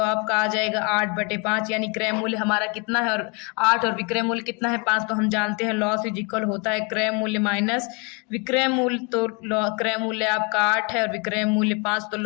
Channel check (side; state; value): right; quieter; 32.6 dB